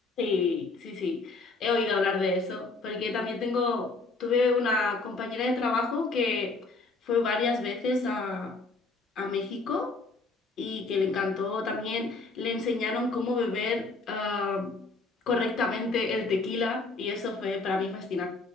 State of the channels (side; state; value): right; quieter; 3.6 dB